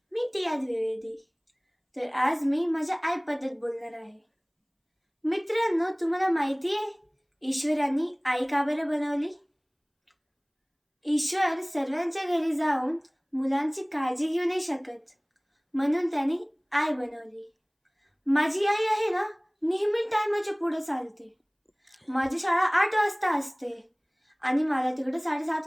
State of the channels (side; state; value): both; identical; correlation 1.00